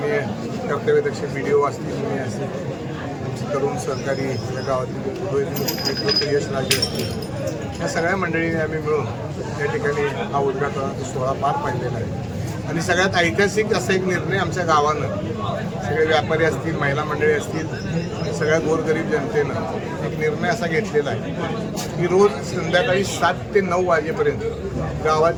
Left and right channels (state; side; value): identical; both; correlation 1.00